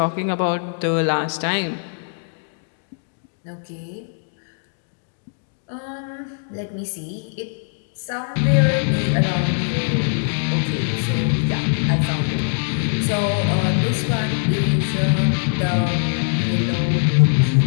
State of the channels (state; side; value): silent; right; digital silence